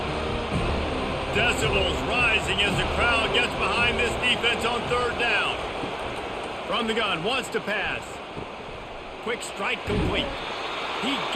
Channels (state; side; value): identical; both; correlation 1.00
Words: Decibels rising as the crowd gets behind this defense on third down. From the gun, wants to pass. Quick strike complete. He